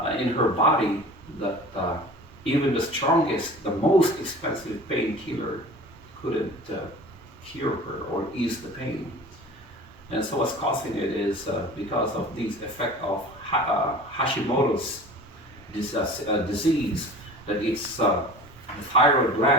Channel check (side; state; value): both; normal; correlation 0.40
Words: in her body that even the strongest, the most expensive painkiller couldn't cure her or ease the pain. And so what's causing it is because of these effect of Hashimoto's disease, that it's the thyroid